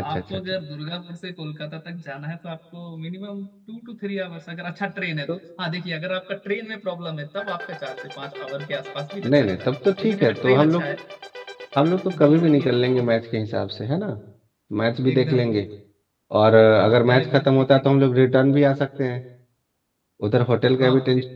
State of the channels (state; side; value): identical; both; correlation 1.00